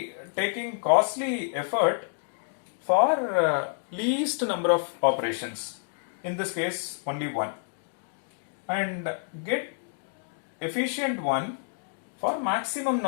taking costly effort for least number of operations, in this case only one, and get efficient one for maximum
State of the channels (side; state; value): right; silent; digital silence